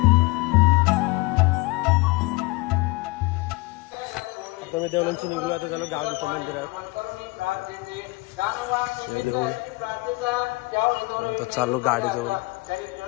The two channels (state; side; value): quieter; right; 24.6 dB